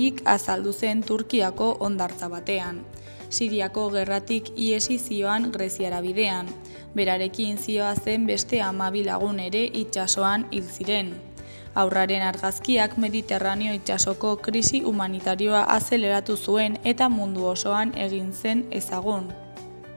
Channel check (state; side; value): inverted; both; correlation -1.00